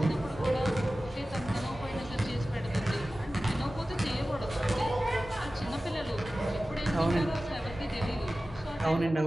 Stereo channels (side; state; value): both; normal; correlation 0.96